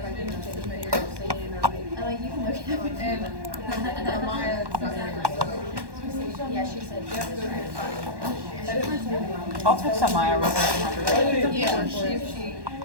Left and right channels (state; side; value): late; left; 1.1 ms